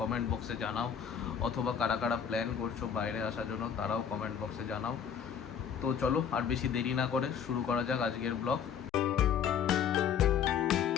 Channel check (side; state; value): right; quieter; 7.8 dB